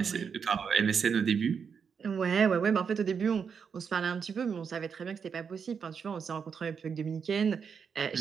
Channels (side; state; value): left; quieter; 6.5 dB